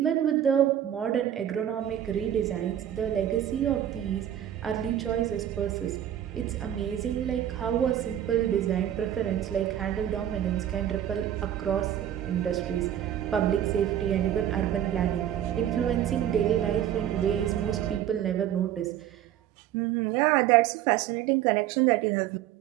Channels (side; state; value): left; quieter; 10.9 dB